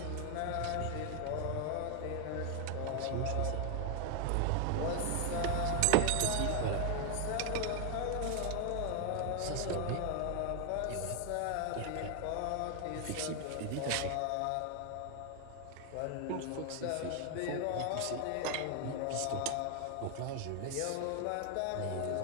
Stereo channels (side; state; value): both; different; correlation 0.00